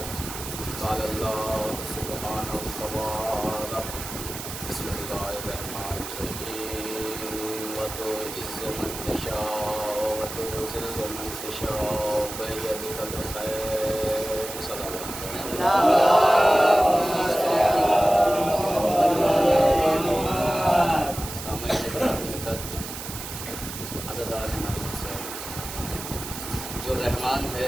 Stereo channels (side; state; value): right; noise; hiss, 9 dB below the sound